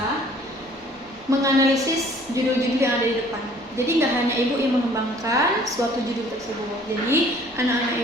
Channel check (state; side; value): normal; both; correlation 0.55